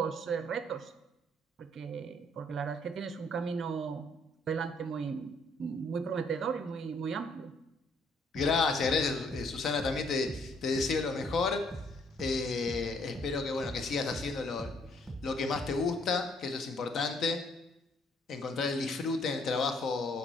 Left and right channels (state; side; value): normal; both; correlation 0.66